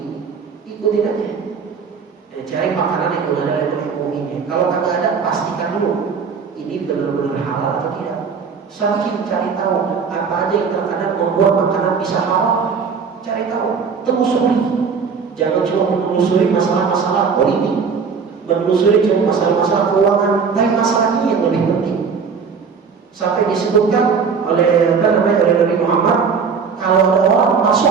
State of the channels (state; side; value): quieter; left; 5.8 dB